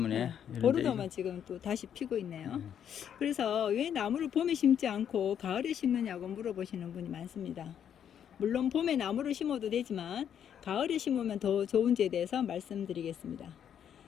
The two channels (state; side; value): quieter; right; 9.0 dB